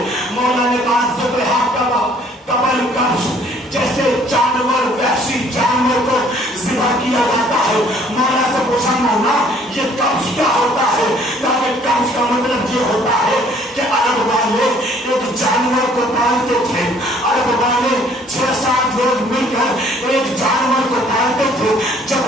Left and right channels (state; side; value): normal; both; correlation 0.59